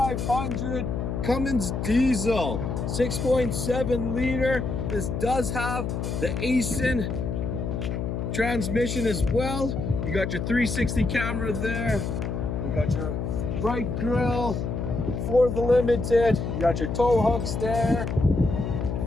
Cummins diesel, 6.7 liter. This does have the Aisin transmission as well. You got your 360 camera there. You got your bright grille for the Limited. You got your tow hooks there.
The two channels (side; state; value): left; noise; hum, 2 dB below the sound